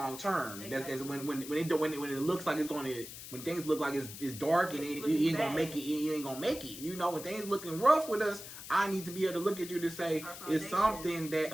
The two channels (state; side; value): noise; left; hiss, 12 dB below the sound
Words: term. Exactly. That's when it looks like it's going to, when things look like it's dark and you ain't gonna make it. You ain't gonna make it. You know, when things looking rough with us, I need to be able to look at you to say it's something that